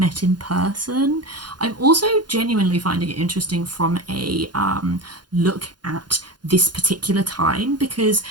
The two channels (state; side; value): late; left; 0.71 ms